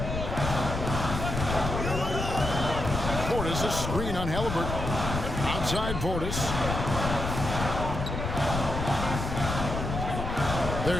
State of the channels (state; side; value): noise; left; rumble, 4 dB below the sound